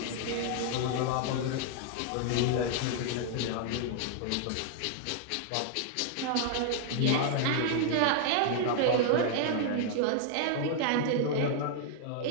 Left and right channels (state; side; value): different; both; correlation -0.01